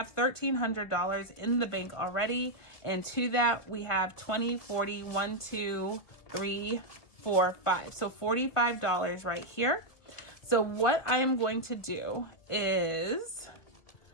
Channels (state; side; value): late; right; 2.2 ms